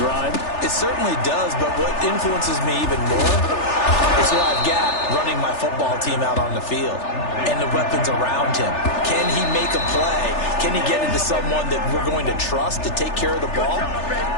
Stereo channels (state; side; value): late; right; 3.4 ms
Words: drive? It certainly does, but what influences me even more is what I've got running my football team out on the field and the weapons around him. Can he make a play? Can he get into someone that we're going to trust to take care of the ball?